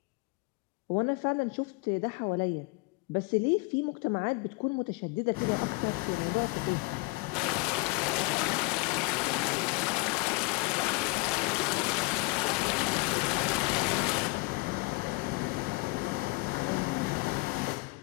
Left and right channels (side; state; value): right; quieter; 26.3 dB